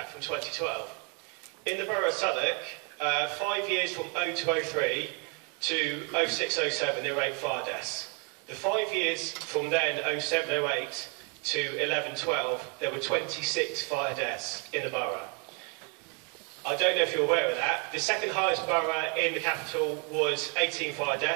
from 2012. In the Borough of Southwark, 5 years from 0203 to 0607, there were 8 fire deaths. The 5 years from then, 0708 to 1112, there were 26 fire deaths in the borough. I don't know if you're aware of that. The second highest borough in the capital was 18 fire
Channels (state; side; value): quieter; left; 35.8 dB